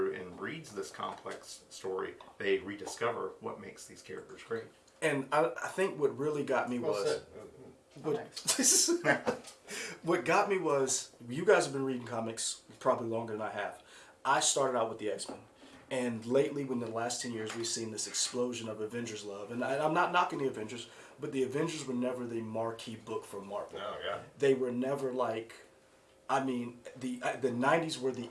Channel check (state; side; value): identical; both; correlation 1.00